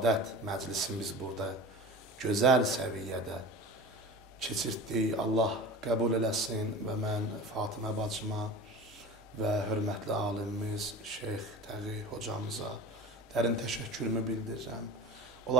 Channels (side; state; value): right; noise; hum, 28 dB below the sound